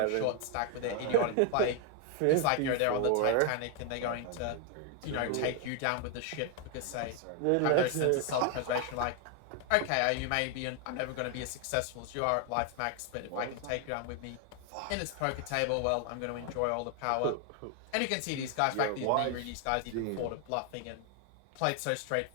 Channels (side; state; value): both; different; correlation 0.01